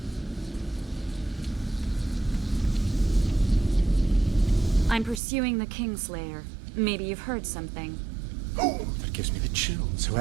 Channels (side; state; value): left; drops out; at 5.2 s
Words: I'm pursuing the Kingslayer. Maybe you've heard something. Oh, that gives me the chills.